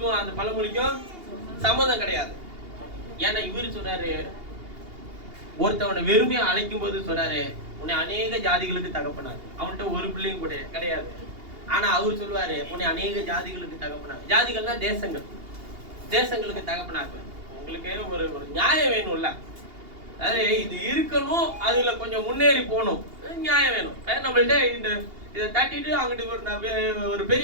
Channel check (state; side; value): late; left; 2.8 ms